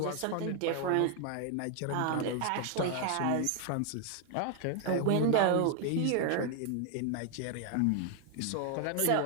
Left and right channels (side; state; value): both; different; correlation 0.00